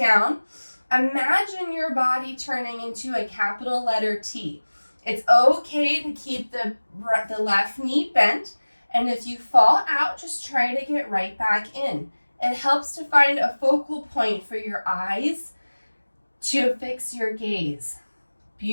Imagine your body turning into a capital letter T. It's okay to keep the left knee bent, and if you fall out, just try to get right back in. It helps to find a focal point for your eyes to fix your gaze.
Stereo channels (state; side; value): inverted; both; correlation -1.00